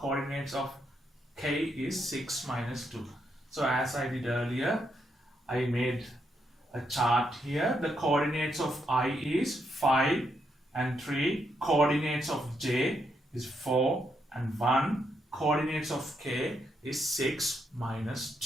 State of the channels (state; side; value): normal; both; correlation 0.79